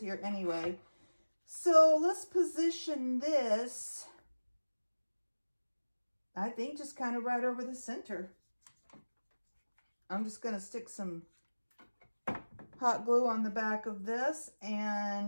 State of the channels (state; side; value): inverted; both; correlation -1.00